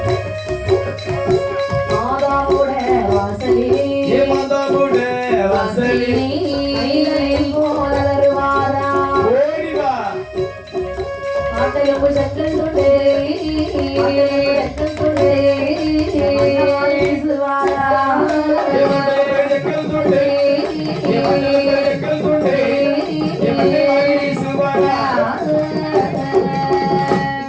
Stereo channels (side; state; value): both; identical; correlation 1.00